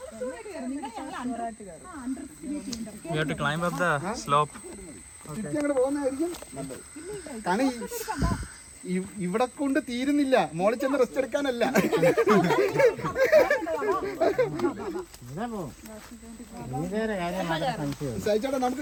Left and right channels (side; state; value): both; identical; correlation 1.00